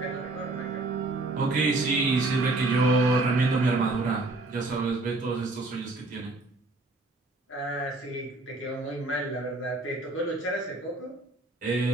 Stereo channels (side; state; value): left; quieter; 3.0 dB